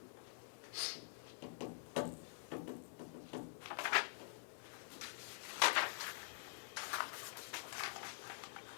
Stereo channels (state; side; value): silent; right; digital silence